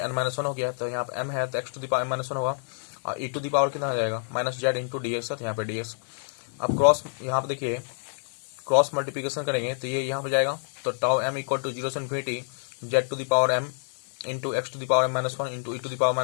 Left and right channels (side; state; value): right; silent; digital silence